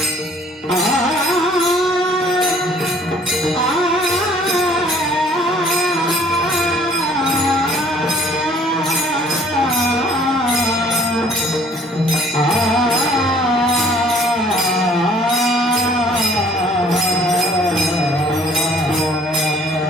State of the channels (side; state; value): both; normal; correlation 0.57